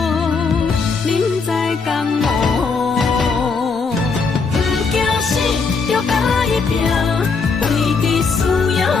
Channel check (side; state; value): right; quieter; 4.8 dB